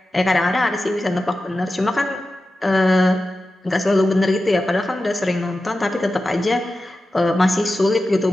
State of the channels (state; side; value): normal; both; correlation 0.93